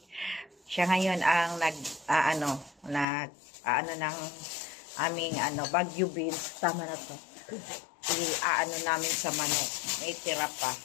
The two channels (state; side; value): drops out; right; at 3.1 s